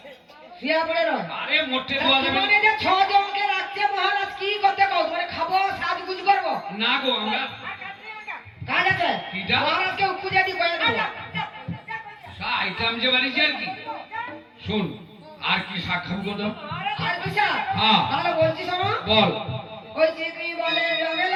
শুয়া পড়ে রয়। আরে মোটে দেওয়া যাবে তোমাকে যে 6 জনকে রাখছে মহারাজ, কি করতে কও? তোমার খাবো, সাজগুজ করবো? না গো, আমরা কাজ আছে? কিটা? মহারাজকে খুঁজে দি কয়ে দেবো। আইটেম যে বাড়িছে আর কি। শুন, আর কি শাক খাবো গো তো? আর কিসা? হ্যাঁ। তাহলে বলছি শোনো। বল। ওই যে কি বলে রবে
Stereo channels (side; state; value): both; identical; correlation 1.00